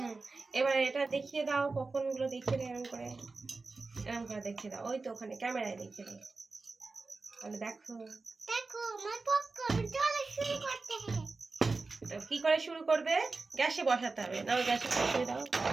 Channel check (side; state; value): left; quieter; 3.9 dB